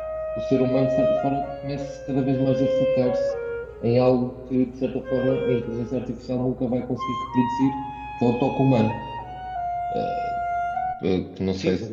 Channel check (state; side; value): identical; both; correlation 1.00